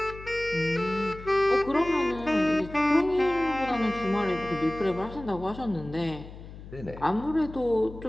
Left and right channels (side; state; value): left; noise; hum, 15 dB below the sound